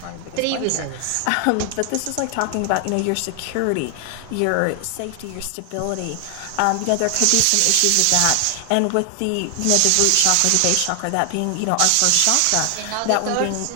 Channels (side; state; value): both; different; correlation 0.00